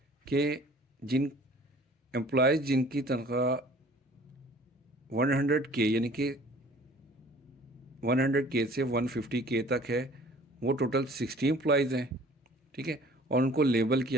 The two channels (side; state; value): both; normal; correlation 0.51